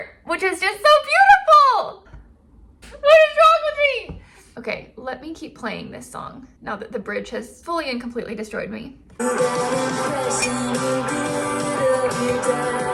which is just so beautiful. What is wrong with me? Okay, let me keep playing this song now that the bridge has fully and completely destroyed me.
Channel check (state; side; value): identical; both; correlation 1.00